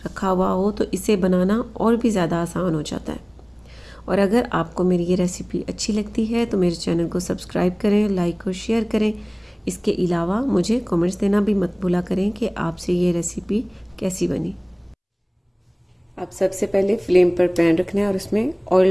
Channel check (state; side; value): identical; both; correlation 1.00